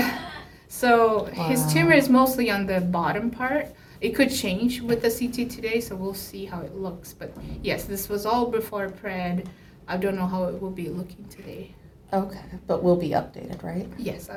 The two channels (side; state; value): both; identical; correlation 1.00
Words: So his Wow. tumor is mostly on the bottom part. It could change with the CT today, so we'll see how it looks. But yes, this was all before pred. I don't know how it will be looking today. Okay, but we'll be updated, right? Yes,